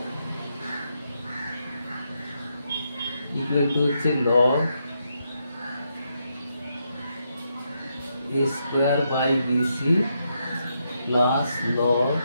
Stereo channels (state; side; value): inverted; both; correlation -0.80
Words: ইকুয়াল টু হচ্ছে log a square by bc plus log